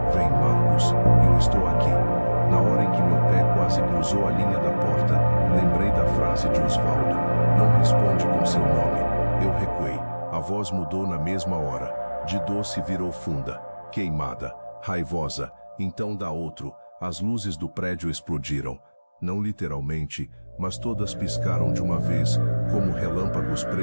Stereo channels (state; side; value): inverted; both; correlation -1.00